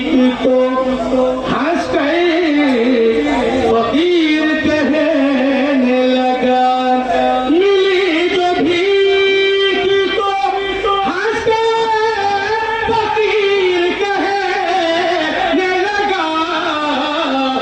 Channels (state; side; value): identical; both; correlation 1.00